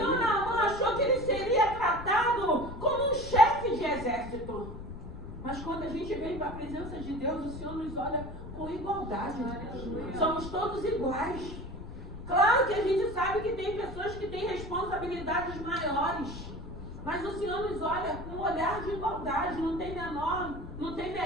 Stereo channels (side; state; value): left; noise; rumble, 12 dB below the sound